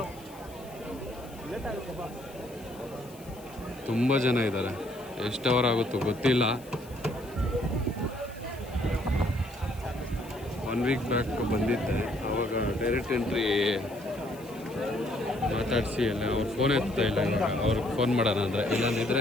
ತುಂಬ ಜನ ಇದ್ದಾರೆ, ಎಷ್ಟು ಅವರ್ ಆಗುತ್ತೋ ಗೊತ್ತಿಲ್ಲ. 1 week ಬ್ಯಾಕ್ ಬಂದಿದ್ದೆ, ಆವಾಗ ಡೈರೆಕ್ಟ್ ಎಂಟ್ರಿ ಮಾತಾಡಿಸಿ ಅಲ್ಲ, ಅವ್ರು ಫೋನ್ ಎತ್ತಾ ಇಲ್ಲ. ಇವಾಗ ಅವ್ರಿಗೆ ಫೋನ್ ಮಾಡೋಣ ಅಂದರೆ,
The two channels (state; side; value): noise; left; hiss, 22 dB below the sound